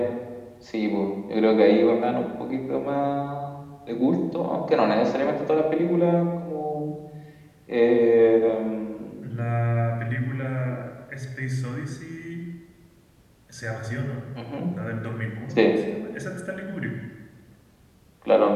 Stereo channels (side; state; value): both; identical; correlation 1.00